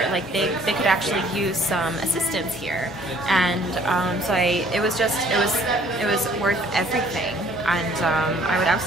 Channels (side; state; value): both; normal; correlation 0.58